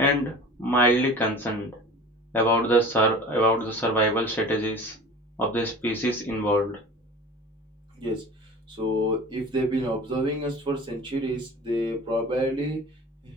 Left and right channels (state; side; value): normal; both; correlation 0.40